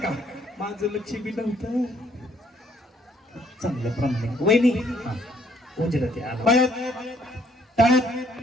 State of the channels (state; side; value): normal; both; correlation 0.66